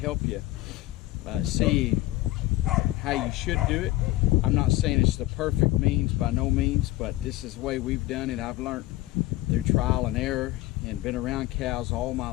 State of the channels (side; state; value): right; quieter; 17.5 dB